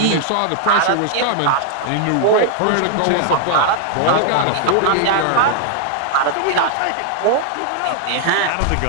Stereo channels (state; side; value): different; both; correlation -0.01